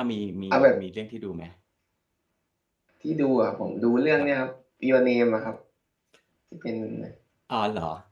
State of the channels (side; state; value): both; identical; correlation 1.00